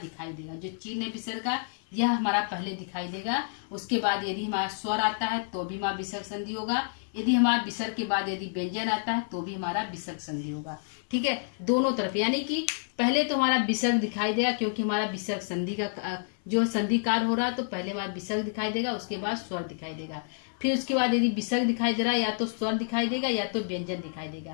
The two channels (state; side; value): silent; right; 59 dB below the other